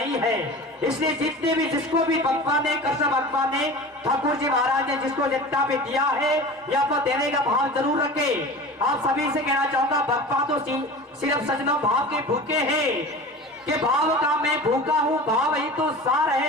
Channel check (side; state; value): both; normal; correlation 0.35